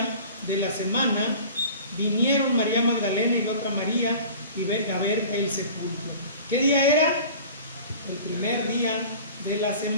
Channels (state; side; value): inverted; both; correlation -0.42